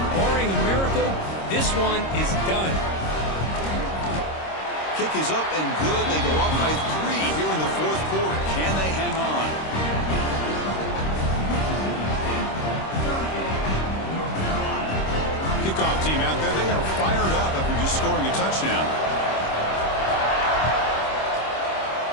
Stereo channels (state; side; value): late; right; 26 ms